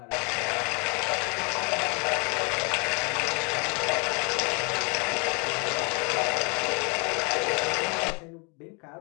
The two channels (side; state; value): right; quieter; 33.3 dB